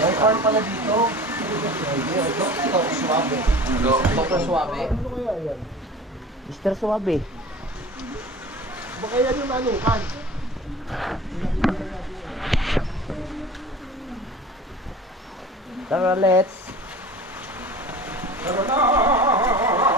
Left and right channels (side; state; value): both; normal; correlation 0.40